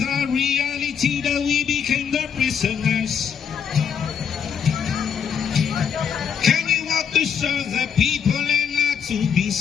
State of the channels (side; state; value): right; quieter; 7.3 dB